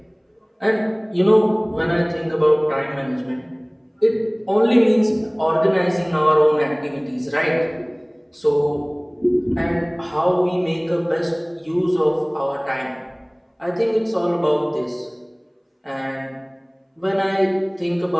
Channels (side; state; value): both; identical; correlation 1.00